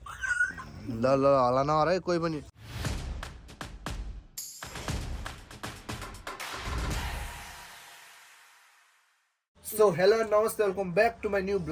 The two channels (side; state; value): both; identical; correlation 1.00